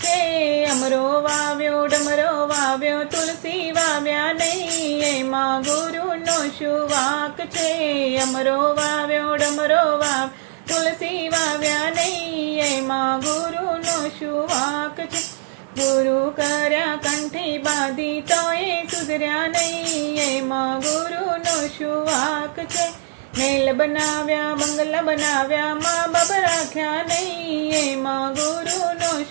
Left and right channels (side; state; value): left; silent; 57 dB below the other